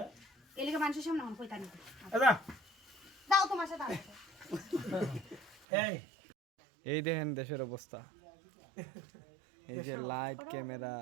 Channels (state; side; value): drops out; left; at 5.7 s